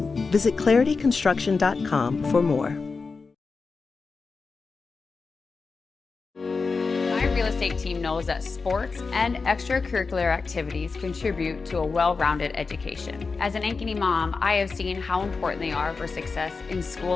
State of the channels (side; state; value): right; quieter; 4.5 dB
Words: Visit clarityconstruction.com for more. Real estate team knows that sports and extracurricular activities contribute to a well-rounded education. As an Ankeny mom, I have seen how important they are for success in